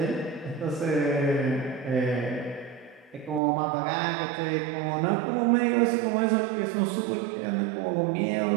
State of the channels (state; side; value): drops out; left; at 3.4 s